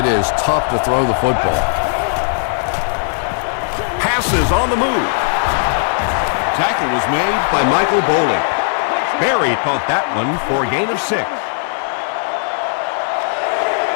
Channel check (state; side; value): silent; right; digital silence